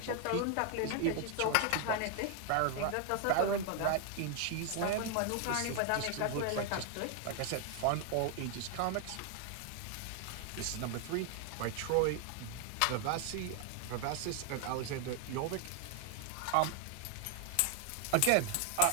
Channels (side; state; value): both; different; correlation 0.00